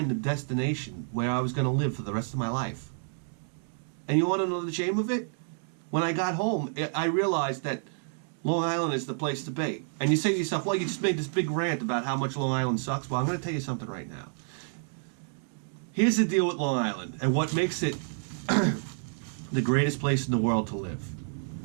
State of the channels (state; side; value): silent; left; digital silence